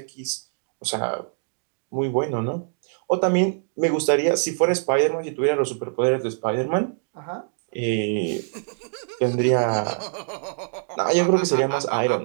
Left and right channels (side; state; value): left; silent; digital silence